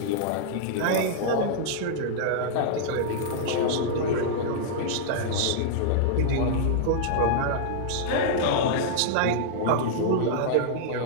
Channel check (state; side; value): different; both; correlation -0.01